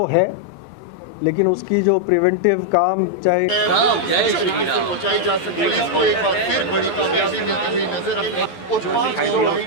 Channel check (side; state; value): right; late; 12 ms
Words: है, लेकिन उसकी जो प्रिवेंटिव काम चाहे पहुंचाई जा सके, पुलिस को एक बार फिर बड़ी कामयाबी मिलती हुई नजर